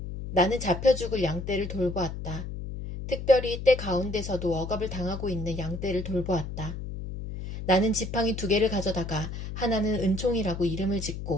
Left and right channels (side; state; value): left; noise; hum, 7 dB below the sound